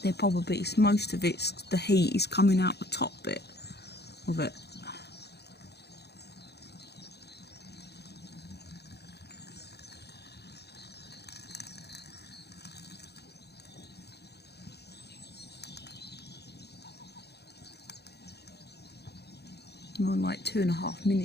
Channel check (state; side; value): late; right; 0.48 ms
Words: they're probably, most of it's, the heat is coming out the top bit of it. I'm on like 2.5